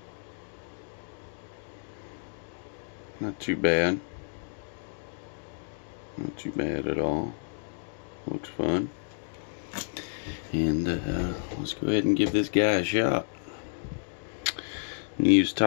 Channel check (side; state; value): right; silent; digital silence